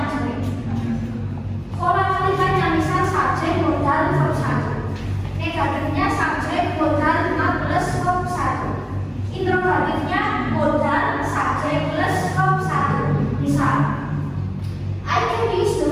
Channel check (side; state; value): both; identical; correlation 1.00